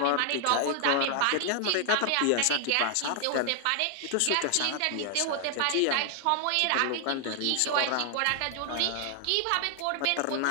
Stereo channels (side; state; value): both; different; correlation 0.00